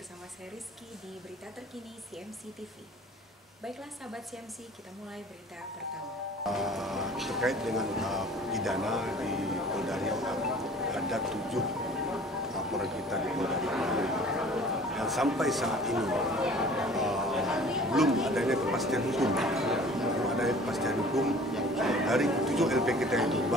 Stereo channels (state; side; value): normal; both; correlation 0.48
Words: saya Rizky di Berita Terkini CMC TV. Baiklah sahabat CMC, kita mulai berita pertama. Terkait dengan pidana di Polda Riau, ada 7 laporan kita di Polda Riau yang sampai saat ini belum adanya kepastian hukum. Dari 7 LP kita itu,